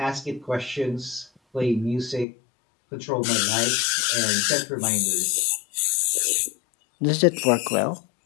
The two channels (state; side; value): drops out; right; at 2.2 s